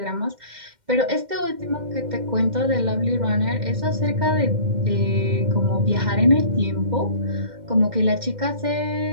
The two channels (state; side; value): late; left; 2.1 ms